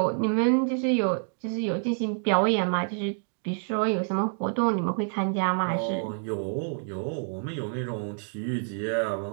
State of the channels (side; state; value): left; silent; digital silence